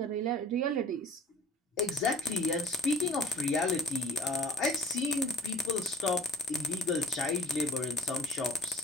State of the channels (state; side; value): normal; both; correlation 0.46